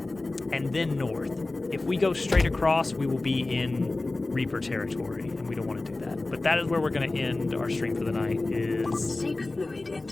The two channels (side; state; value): right; quieter; 3.1 dB